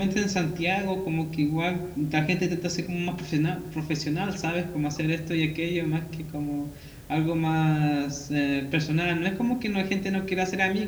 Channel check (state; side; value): identical; both; correlation 1.00